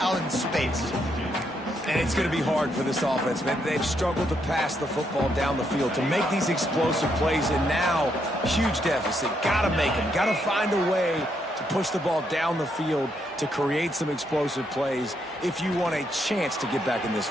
out in space. And it's going to be hard for this offense, man. They've struggled to pass the football down the field, to make these explosive plays, and now, huge deficit. Got to make them. Got to find a way to push the ball down the field to create some explosive plays if you want a chance to get back in this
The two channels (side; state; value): both; normal; correlation 0.77